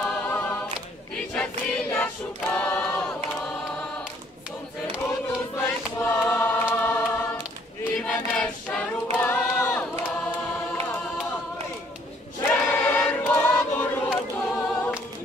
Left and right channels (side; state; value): both; normal; correlation 0.63